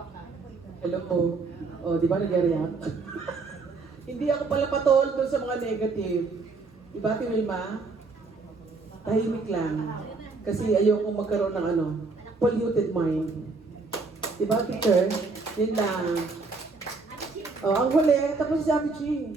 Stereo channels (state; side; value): quieter; left; 4.0 dB